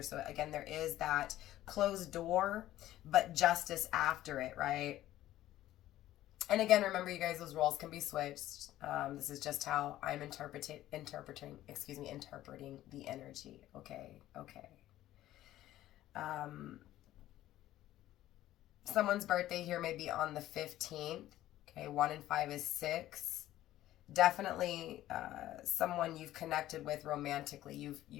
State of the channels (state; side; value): quieter; right; 14.2 dB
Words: So again, there is that closed door, but justice after it, right? And again, remember, you guys, those roles can be switched. This is just how I'm interpreting the energy. Okay. Someone's birthday here may be on the 15th. Okay, 1 and 5 is 6. Definitely someone you've connected with romantically. You've